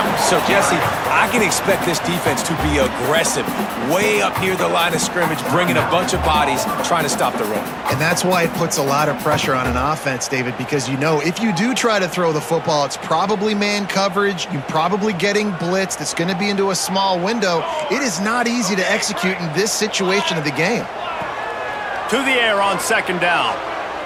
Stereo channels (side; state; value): both; identical; correlation 1.00